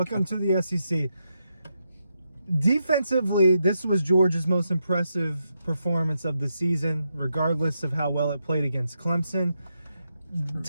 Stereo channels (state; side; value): inverted; both; correlation -0.84